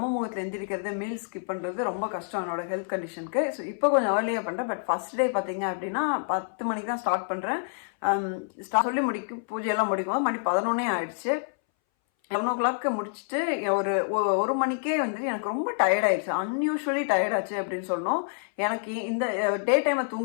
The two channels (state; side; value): silent; right; 60 dB below the other